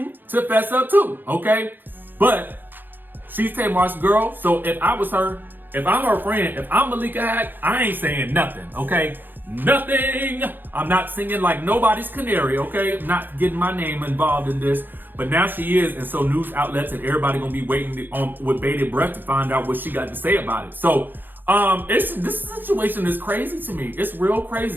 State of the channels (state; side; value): late; left; 0.091 ms